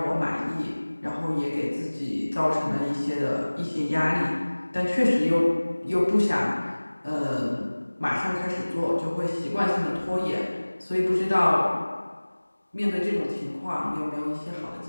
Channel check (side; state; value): both; inverted; correlation -1.00